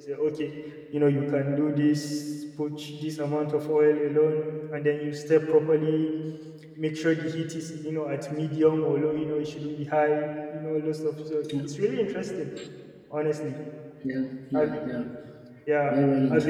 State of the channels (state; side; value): identical; both; correlation 1.00